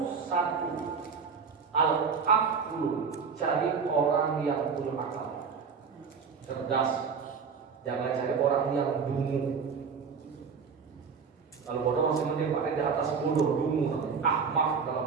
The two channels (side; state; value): left; quieter; 5.8 dB